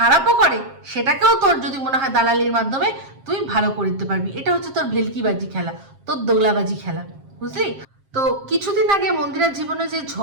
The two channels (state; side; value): late; left; 7.5 ms